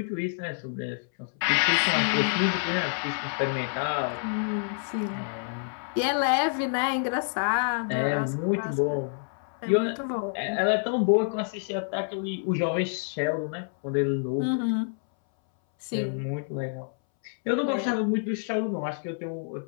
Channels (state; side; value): silent; right; 60 dB below the other